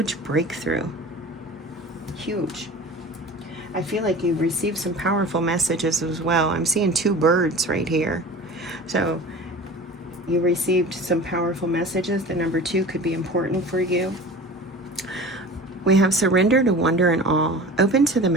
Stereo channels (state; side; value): normal; both; correlation 0.38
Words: breakthrough. Huge. I feel like you received some powerful messages as well. I'm seeing 2 birds right here. So you received some powerful messages. The number 2 could be important for you. We have surrender to wonder and awe. Open to the